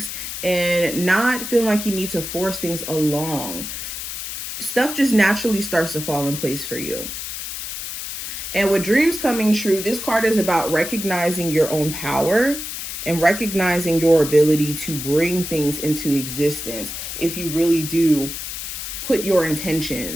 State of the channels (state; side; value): noise; left; hiss, 7 dB below the sound